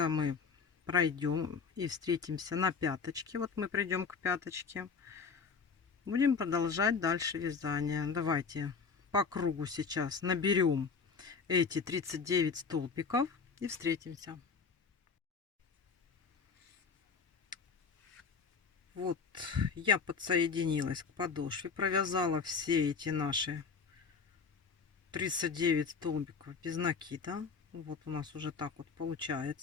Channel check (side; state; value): right; quieter; 5.4 dB